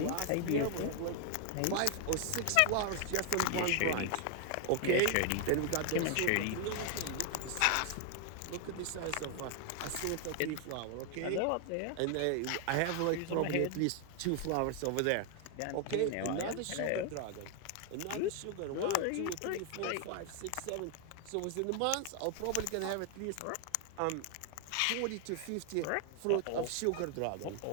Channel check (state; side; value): different; both; correlation 0.00